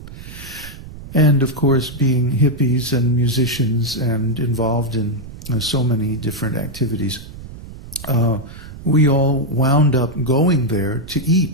And of course, being hippies and musicians and involved in so many different activities, we all wound up going there to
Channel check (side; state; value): right; noise; rumble, 14 dB below the sound